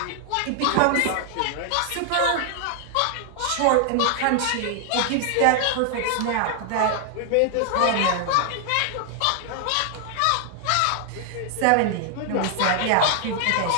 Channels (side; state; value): both; different; correlation 0.00